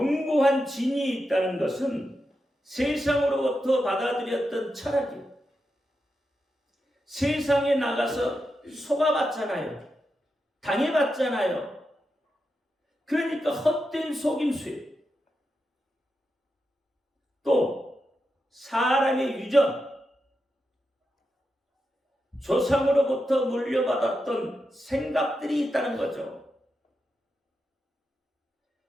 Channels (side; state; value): both; normal; correlation 0.87